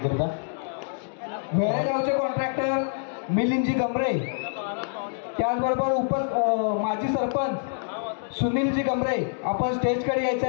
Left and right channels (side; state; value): right; silent; digital silence